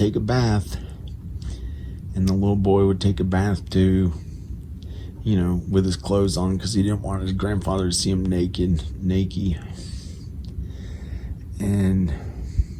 take a bath. And the little boy would take a bath too, with his clothes on, because he didn't want his grandfather to see him naked. And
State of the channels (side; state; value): both; identical; correlation 1.00